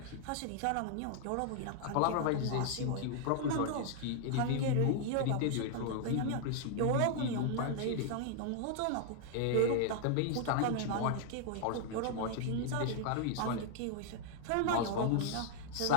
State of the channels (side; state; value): both; different; correlation 0.00